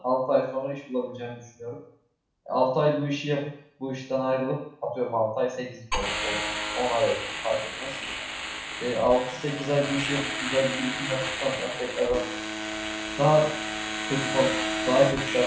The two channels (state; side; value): identical; both; correlation 1.00